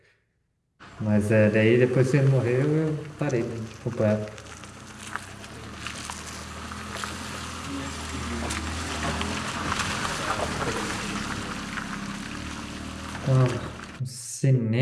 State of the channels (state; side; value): identical; both; correlation 1.00